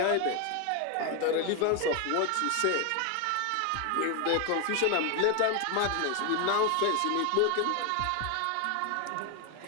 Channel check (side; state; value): both; different; correlation 0.01